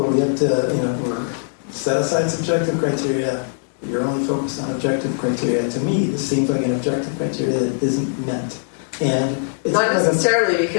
where we have to, we're set aside subjective criteria. You're only focused on objective criteria. To me, this seems like an objective criteria that isn't met. And it's not necessarily,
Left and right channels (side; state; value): right; silent; digital silence